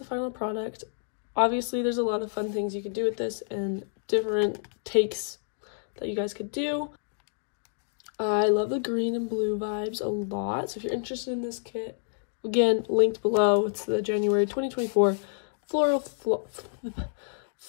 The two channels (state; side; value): silent; right; digital silence